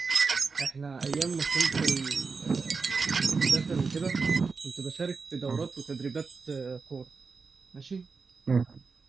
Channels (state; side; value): quieter; left; 4.7 dB